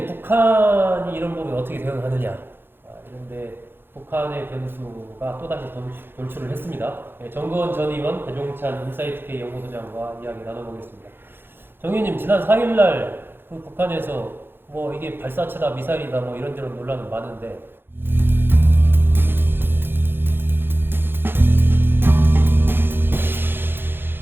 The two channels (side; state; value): left; late; 0.10 ms